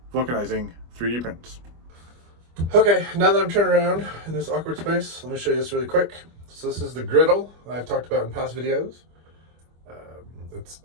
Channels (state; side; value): late; left; 25 ms